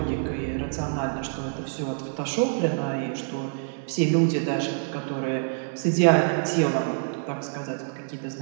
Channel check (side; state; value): left; silent; digital silence